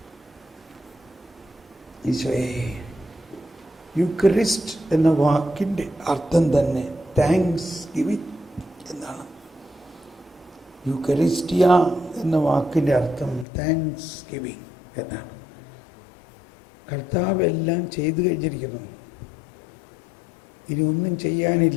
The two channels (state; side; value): drops out; right; at 13.5 s